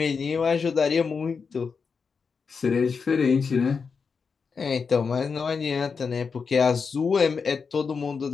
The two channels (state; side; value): quieter; right; 5.4 dB